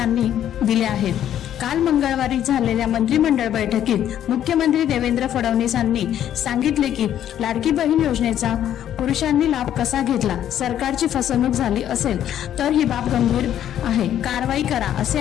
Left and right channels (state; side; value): quieter; right; 10.8 dB